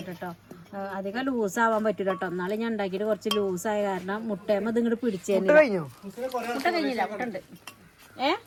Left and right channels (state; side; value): identical; both; correlation 1.00